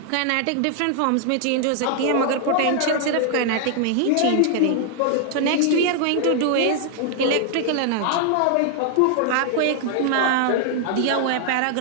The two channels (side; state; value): both; different; correlation 0.00